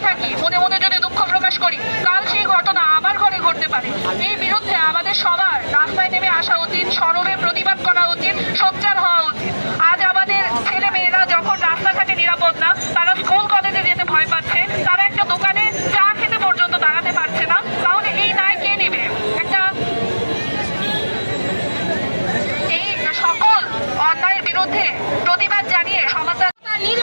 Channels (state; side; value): inverted; both; correlation -1.00